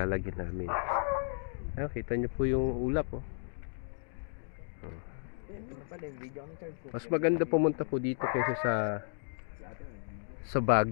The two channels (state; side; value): silent; right; digital silence